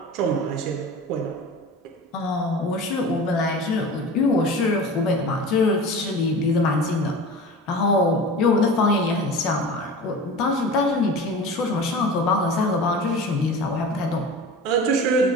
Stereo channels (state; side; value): normal; both; correlation 0.35